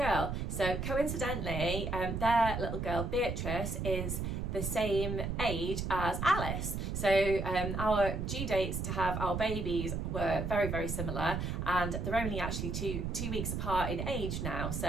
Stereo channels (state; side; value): noise; right; rumble, 3 dB below the sound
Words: So coincidentally, their little girl Beatrice is the same age as Alice. So our due dates to have our babies were very, very similar, and they're only actually two weeks apart in age now.